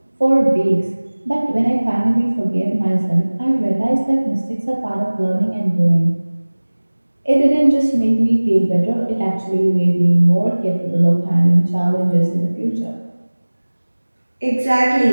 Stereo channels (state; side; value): inverted; both; correlation -1.00